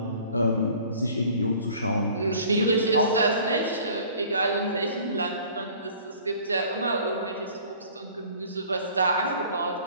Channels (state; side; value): inverted; both; correlation -0.50